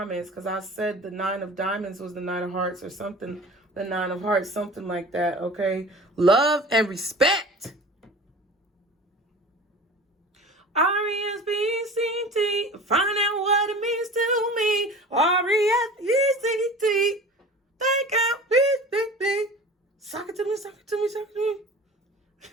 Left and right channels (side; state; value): both; normal; correlation 0.39